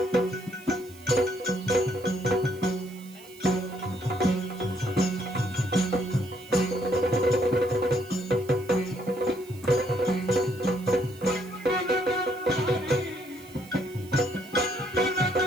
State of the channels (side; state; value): right; noise; hiss, 22 dB below the sound